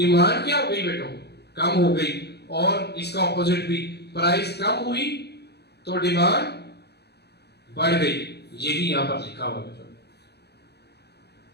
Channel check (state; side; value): late; right; 0.48 ms